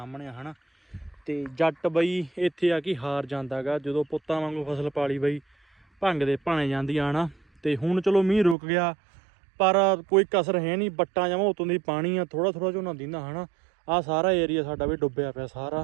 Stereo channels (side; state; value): left; drops out; at 8.6 s